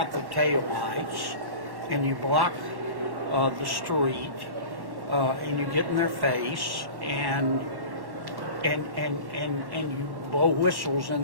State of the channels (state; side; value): late; left; 1.1 ms